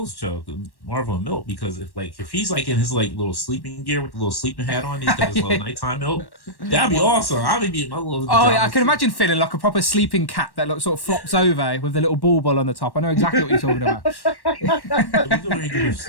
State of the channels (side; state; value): right; late; 1.1 ms